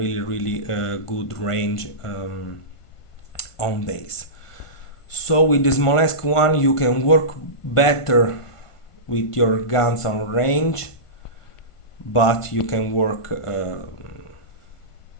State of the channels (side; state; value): right; late; 1.5 ms